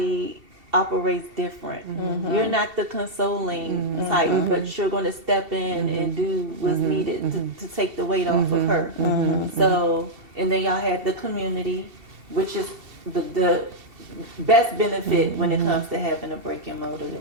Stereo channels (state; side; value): late; left; 2.7 ms